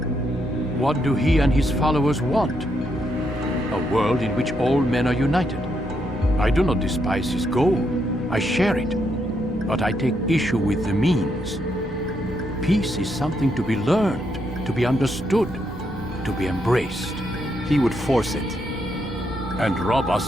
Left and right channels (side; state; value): both; normal; correlation 0.78